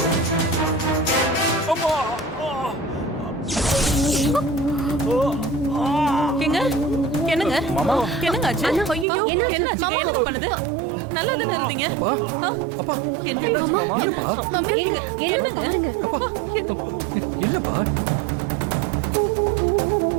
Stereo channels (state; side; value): drops out; left; at 9.1 s